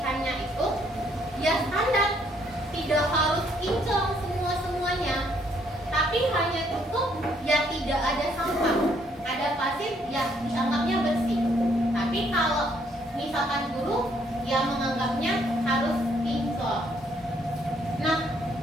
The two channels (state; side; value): normal; both; correlation 0.68